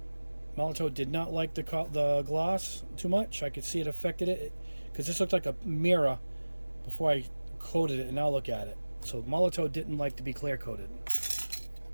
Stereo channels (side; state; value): both; inverted; correlation -1.00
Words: Molotow did not like the gloss too much. I could see it affected it because this looked like a mirror before I coated it, and now look at it. So Molotow didn't like to be clear coated.